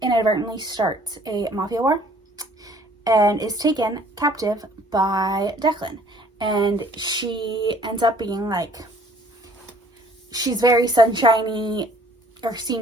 inadvertently starts a mafia war and is taken captive by Declan. And she ends up being she's very sunshiny, or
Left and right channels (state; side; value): normal; both; correlation 0.56